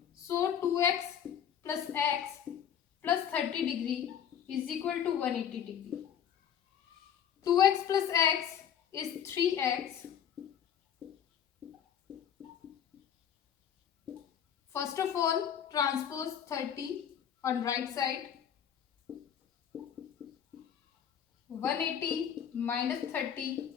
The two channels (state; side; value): quieter; right; 8.8 dB